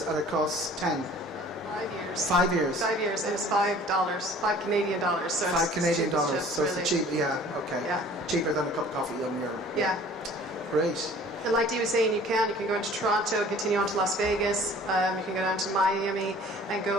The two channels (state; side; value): normal; both; correlation 0.49